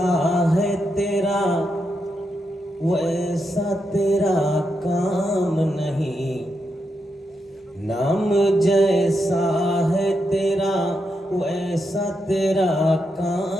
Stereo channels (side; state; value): both; normal; correlation 0.84